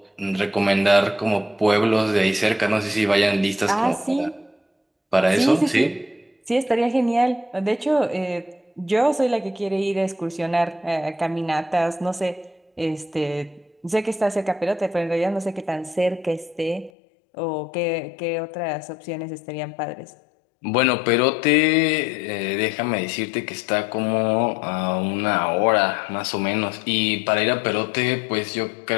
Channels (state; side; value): drops out; right; at 16.9 s